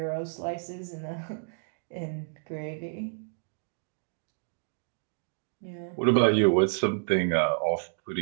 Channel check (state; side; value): silent; left; digital silence